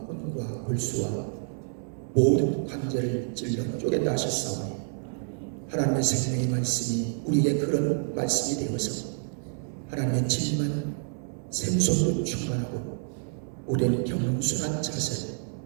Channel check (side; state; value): left; silent; 59 dB below the other